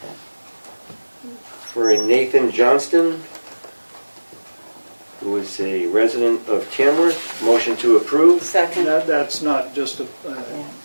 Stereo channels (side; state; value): both; inverted; correlation -1.00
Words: for a Nathan Johnston, who is a resident of Tamworth. Motion to approve. Second. That's not just a,